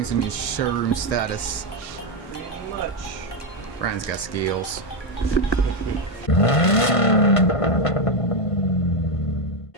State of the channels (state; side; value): late; right; 1.6 ms